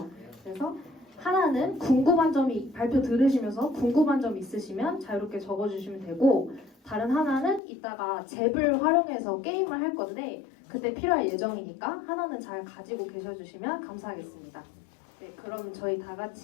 그래서 하나는 궁금한 점이 발표 들으시면서 궁금한 점 있으시면 자유롭게 적어주시면 되고, 다른 하나는 이따가 잽을 활용해서 게임을 할 건데 그때 필요할 예정이니까 하나는 잘 가지고 계셔주시면 감사하겠습니다. 네, 그럼 저희 다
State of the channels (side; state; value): right; drops out; at 7.6 s